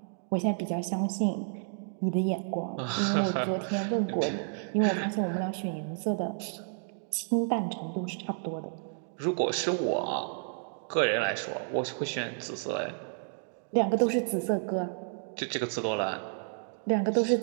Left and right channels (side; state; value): left; silent; digital silence